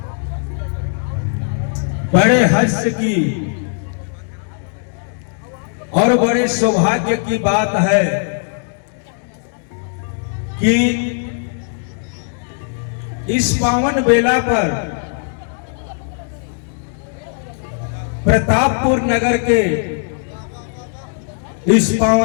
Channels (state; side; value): silent; right; digital silence